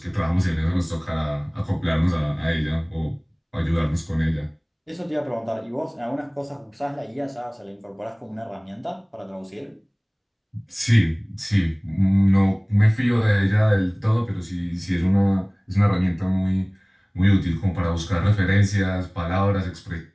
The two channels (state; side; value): identical; both; correlation 1.00